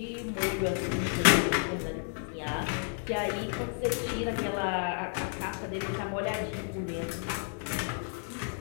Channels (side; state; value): right; silent; 57 dB below the other